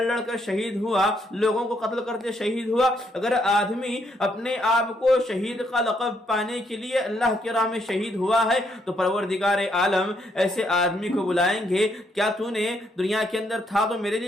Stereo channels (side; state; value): both; normal; correlation 0.73